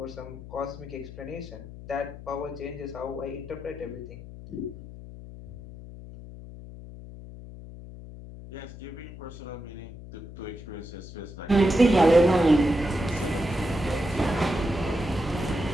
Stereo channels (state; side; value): noise; left; hum, 14 dB below the sound